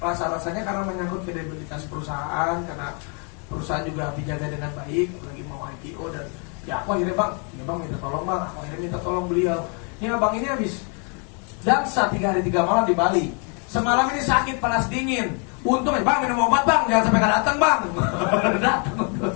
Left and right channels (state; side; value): quieter; right; 37.9 dB